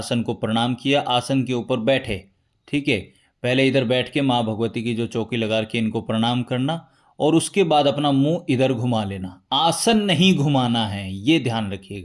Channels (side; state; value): both; identical; correlation 1.00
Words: को प्रणाम किया, आसन के ऊपर बैठे। ठीक है, पहले इधर बैठ के माँ भगवती की जो चौकी लगा रखी है इनको प्रणाम करना, और उसके बाद अपना मुंह इधर घुमा लेना। आसन नहीं घुमाना है, ये ध्यान